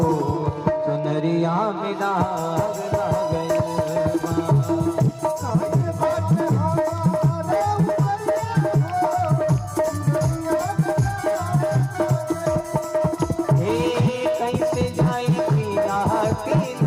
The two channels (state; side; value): identical; both; correlation 1.00